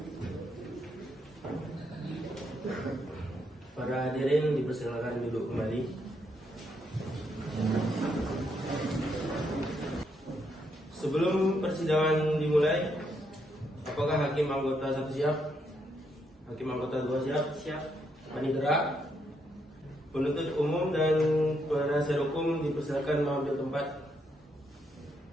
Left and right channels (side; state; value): both; normal; correlation 0.77